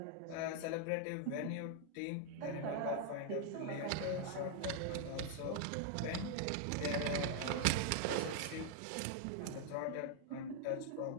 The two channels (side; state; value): both; different; correlation 0.00